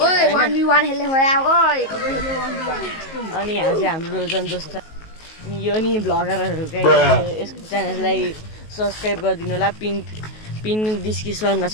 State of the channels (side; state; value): right; late; 19 ms